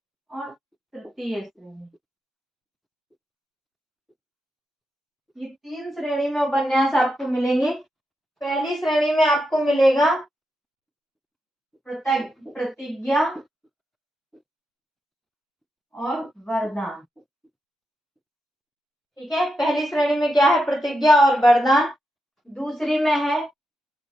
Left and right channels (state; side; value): normal; both; correlation 0.86